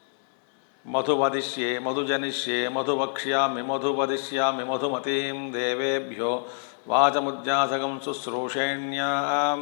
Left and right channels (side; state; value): right; silent; 61 dB below the other